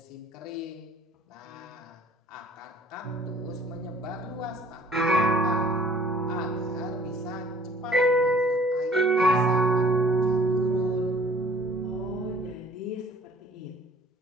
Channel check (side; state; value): both; normal; correlation 0.54